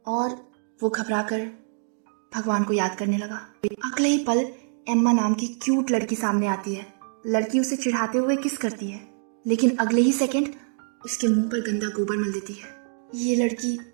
और वो घबराकर भगवान को याद करने लगा। अगले ही पल एम्मा नाम की क्यूट लड़की सामने आती है। लड़की उसे चिढ़ाते हुए किस करती है, लेकिन अगले ही सेकंड उसके मुंह पर गंदा गोबर मल देती है। ये लड़की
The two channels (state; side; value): silent; left; digital silence